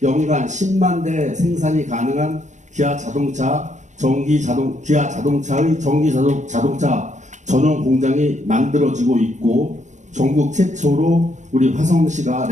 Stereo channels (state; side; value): late; left; 0.35 ms